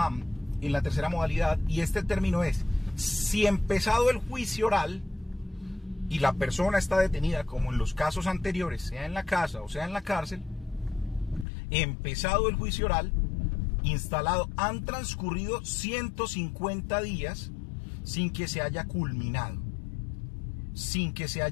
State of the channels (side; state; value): right; drops out; at 11.5 s